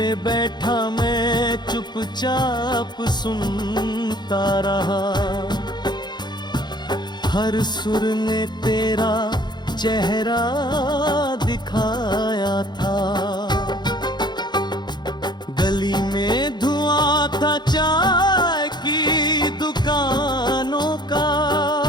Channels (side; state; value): right; late; 0.21 ms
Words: बैठा मैं चुपचाप सुनता रहा। हर सुर ने तेरा चेहरा दिखाया था। गली में धुआं था चाय की दुकानों का,